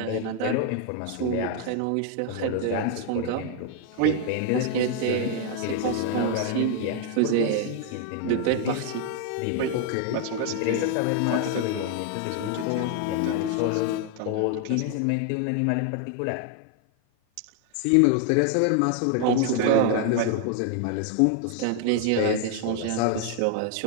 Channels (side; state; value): both; different; correlation 0.00